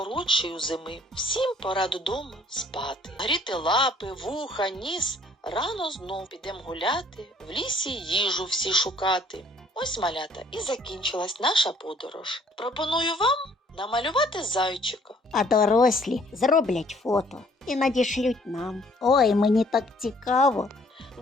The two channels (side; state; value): both; normal; correlation 0.60